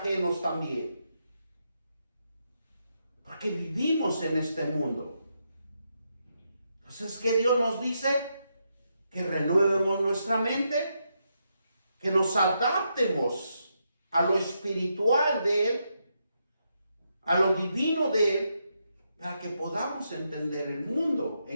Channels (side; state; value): both; inverted; correlation -0.82